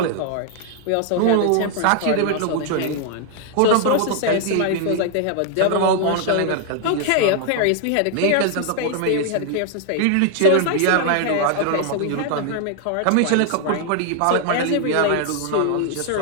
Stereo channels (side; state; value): both; different; correlation 0.00